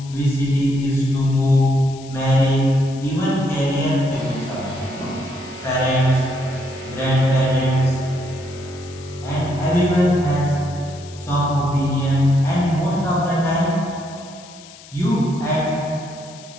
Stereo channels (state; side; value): noise; left; hiss, 20 dB below the sound